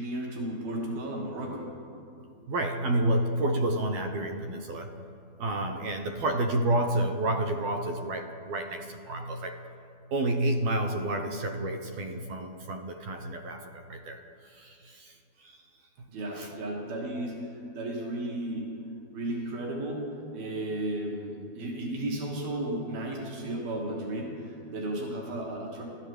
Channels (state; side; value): late; left; 12 ms